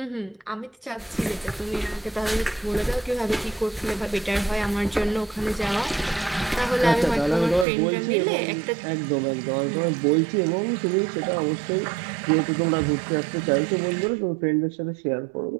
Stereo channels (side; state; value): left; drops out; at 7.7 s